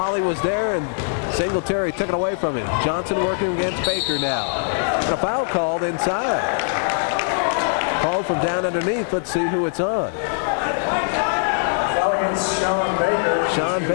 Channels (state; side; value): silent; right; digital silence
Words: was there and Singletary took it away from him. Johnson working against Baker now. And a foul called inside. Called from down underneath. Let's see who it's on. Foul against Sean Baker. Sean